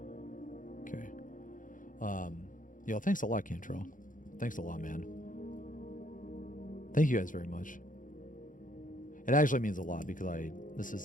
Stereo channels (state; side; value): late; right; 0.38 ms